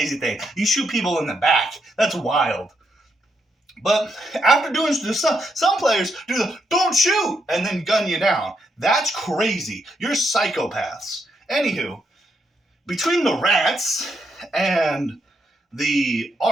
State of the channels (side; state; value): both; normal; correlation 0.79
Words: thing. You shoot people in the back. That's wild. But after doing this, some players do the don't shoot and then gun you down. That's crazy. You're psychopaths. Anywho, between the rats and the